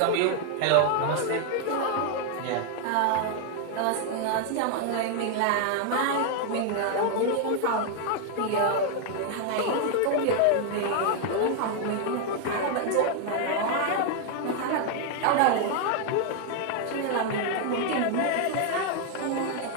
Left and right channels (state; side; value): different; both; correlation 0.00